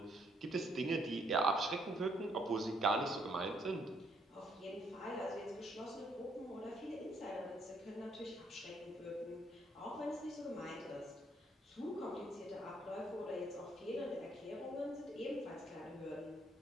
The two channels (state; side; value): normal; both; correlation 0.70